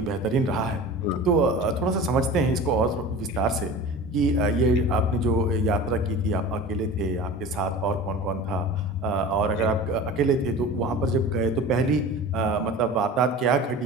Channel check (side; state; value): both; normal; correlation 0.36